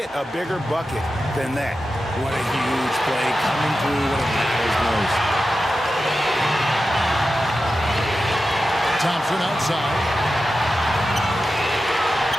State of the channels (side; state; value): both; normal; correlation 0.92